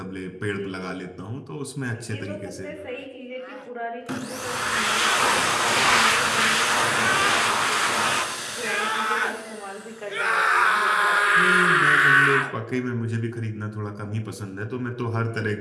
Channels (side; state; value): both; identical; correlation 1.00